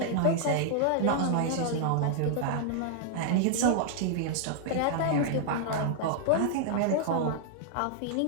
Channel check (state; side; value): different; both; correlation -0.01